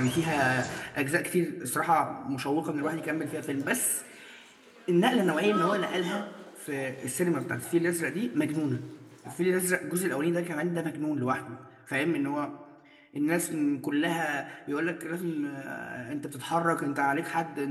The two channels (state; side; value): identical; both; correlation 1.00